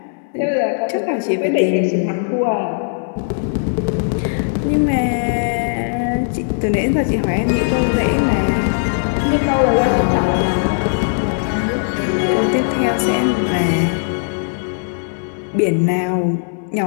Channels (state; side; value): silent; right; digital silence